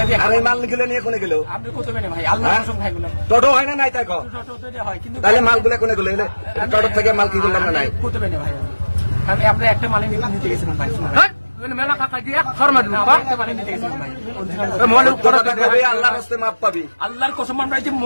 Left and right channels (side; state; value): both; inverted; correlation -1.00